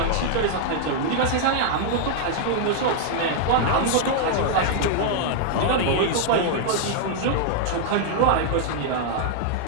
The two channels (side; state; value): both; different; correlation -0.01